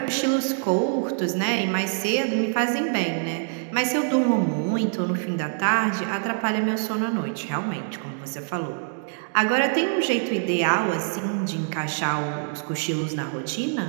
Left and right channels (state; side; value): silent; left; digital silence